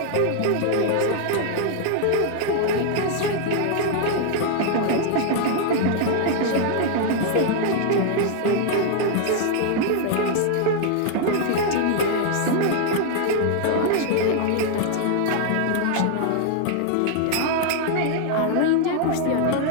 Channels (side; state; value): both; different; correlation 0.00